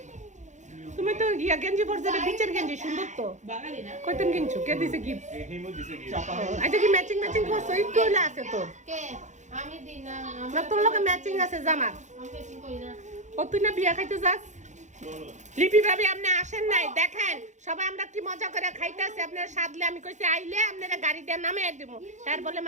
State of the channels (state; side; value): late; left; 0.35 ms